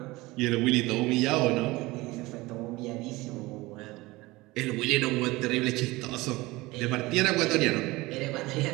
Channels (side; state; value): left; quieter; 20.8 dB